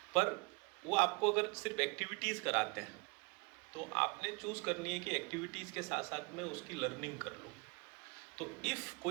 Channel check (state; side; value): quieter; left; 30.6 dB